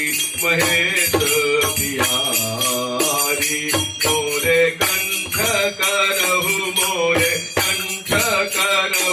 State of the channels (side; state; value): both; identical; correlation 1.00